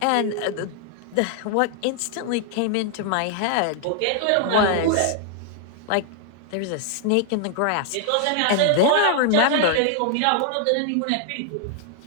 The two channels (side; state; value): both; different; correlation 0.00